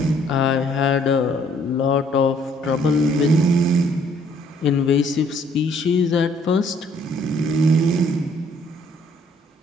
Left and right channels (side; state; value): both; normal; correlation 0.63